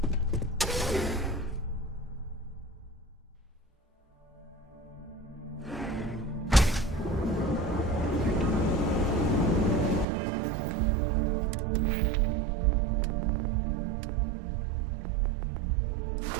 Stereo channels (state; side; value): drops out; left; at 10.1 s